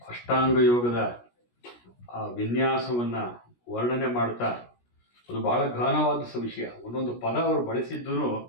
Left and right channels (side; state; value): right; late; 17 ms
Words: ಅಷ್ಟಾಂಗ ಯೋಗದ ಆ ವಿನ್ಯಾಸವನ್ನು ವರ್ಣನೆ ಮಾಡ್ತಾ ಅದು ಬಹಳ ಘನವಾದ ವಿಷಯ. ಒಂದೊಂದು ಪದ ಅವರು ಬಳಸಿದ್ದು